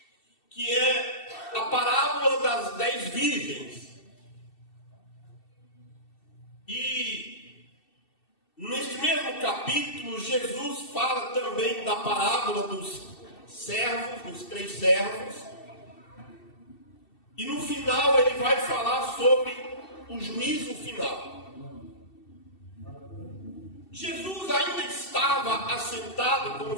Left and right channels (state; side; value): late; right; 2.7 ms